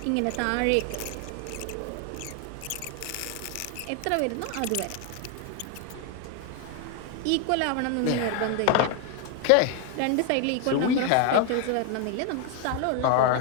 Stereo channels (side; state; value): both; different; correlation 0.01